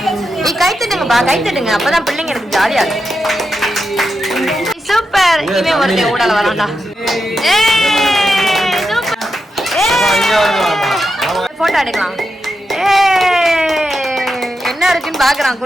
நீ கை தட்டுங்கப்பா, கை தட்டுங்க. அப்பதான் பிள்ளைங்க எனக்கு ஜாலியா இருக்கு. சூப்பர். இனிமே ஒரு ஊடால வரான்டா. போட்டோ எடுக்கலாம். என்ன இருக்குன்னு பாக்குறான்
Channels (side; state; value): both; normal; correlation 0.87